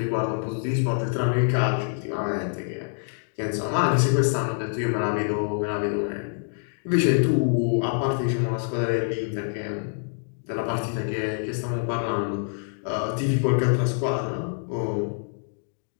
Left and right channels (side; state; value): right; silent; digital silence